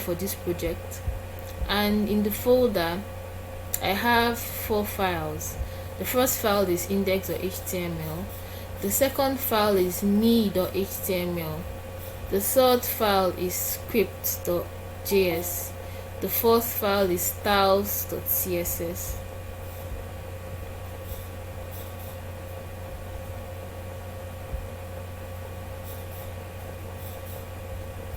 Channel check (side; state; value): both; identical; correlation 1.00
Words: for this project, and in the folder I have 4 files. The first file is index.html, the second file is me.html, the third file is script.js, the fourth file is styles.css.